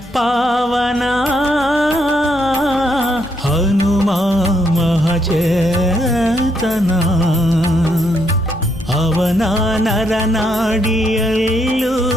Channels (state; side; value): normal; both; correlation 0.75